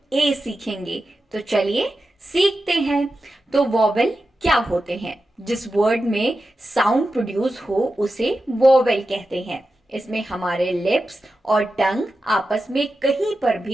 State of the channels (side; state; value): both; normal; correlation 0.91